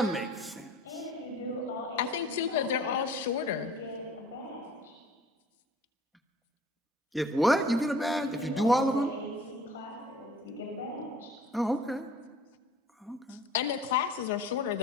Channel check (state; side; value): normal; both; correlation 0.49